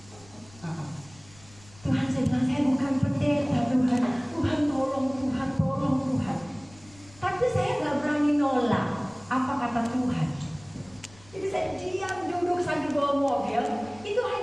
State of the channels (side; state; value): left; noise; rumble, 24 dB below the sound